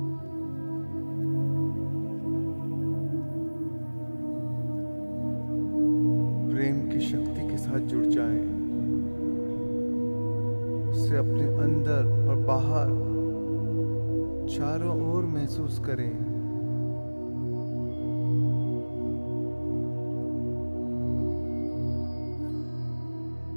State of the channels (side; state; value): both; inverted; correlation -1.00